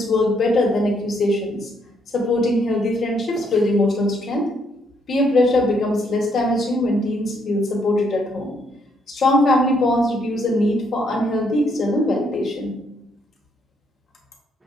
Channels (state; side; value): normal; both; correlation 0.72